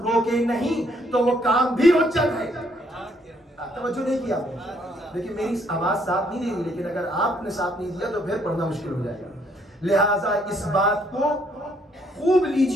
روکے نہیں تو وہ کام بھی حجت ہے۔ توجہ نہیں کیا آپ نے؟ لیکن میری آواز ساتھ نہیں دے رہی، لیکن اگر آپ نے ساتھ نہیں دیا تو پھر پڑھنا مشکل ہو جائے گا۔ لہٰذا اس بات کو خوب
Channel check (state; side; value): normal; both; correlation 0.68